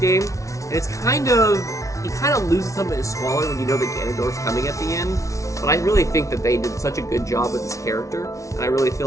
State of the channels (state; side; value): late; right; 0.15 ms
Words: And it's he kind of loses some of his squalor when you know that Ganondorf's coming at the end. But I really think that they did such a good job with this character, and I really